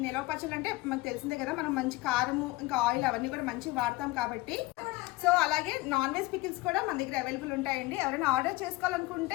నిల్వ పచ్చళ్ళు అంటే మనకు తెలిసిందే కదా, మనం మంచి కారము ఇంకా ఆయిల్ అవన్నీ కూడా మంచిగా వాడతాం కాబట్టి. సో అలాగే నాన్ వెజ్ పికిల్స్ కూడా మన దగ్గర అవైలబుల్ ఉంటాయండి. ఎవరైనా ఆర్డర్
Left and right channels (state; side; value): quieter; right; 20.4 dB